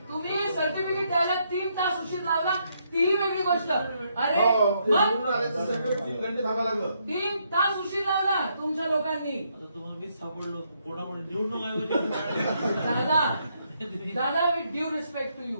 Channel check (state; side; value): inverted; both; correlation -0.75